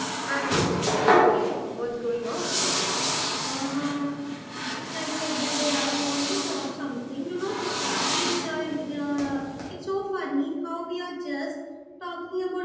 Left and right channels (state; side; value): identical; both; correlation 1.00